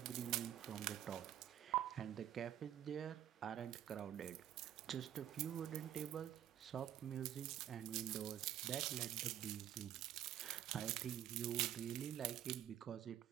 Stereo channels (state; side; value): quieter; left; 11.2 dB